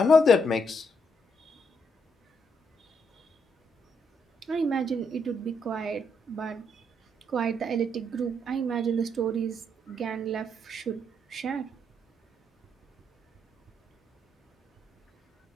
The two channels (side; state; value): both; normal; correlation 0.75